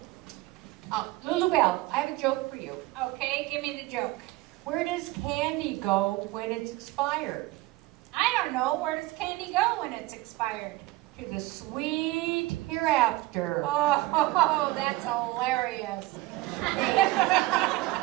Lulubelle, I have a joke for you. Okay, give me the joke. Where does candy go when it's expired? I don't know, where does candy go when it's expired? To the sweet hereafter. Oh, that's hilarious.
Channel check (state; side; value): quieter; left; 18.9 dB